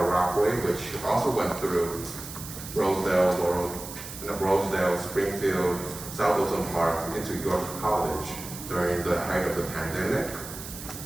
Rockaway, which also went through Rosedale, Springfield, South Wilson Park into York College during the height of the pandemic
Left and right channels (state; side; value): noise; right; hiss, 11 dB below the sound